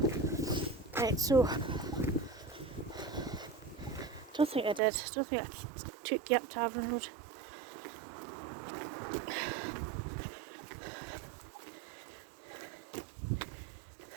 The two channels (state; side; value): drops out; left; at 4.8 s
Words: Right, so don't think I did. Don't think I took you up to Averon Road.